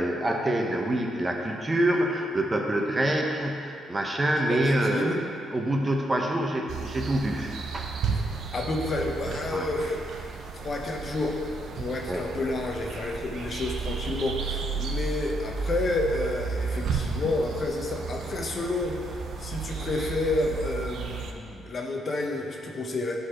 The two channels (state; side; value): normal; both; correlation 0.78